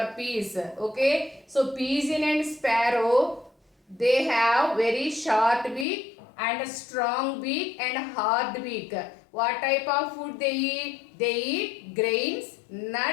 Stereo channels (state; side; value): drops out; right; at 5.9 s